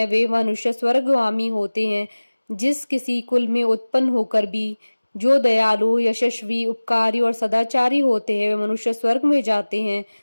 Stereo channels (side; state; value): both; inverted; correlation -1.00